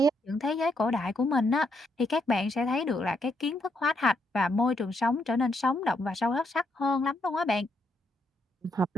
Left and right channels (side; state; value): both; normal; correlation 0.77